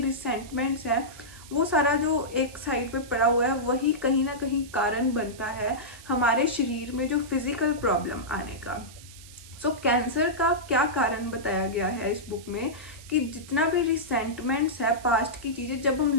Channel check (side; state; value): right; noise; hiss, 19 dB below the sound